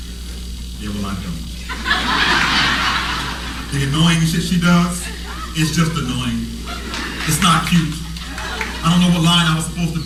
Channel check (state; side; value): identical; both; correlation 1.00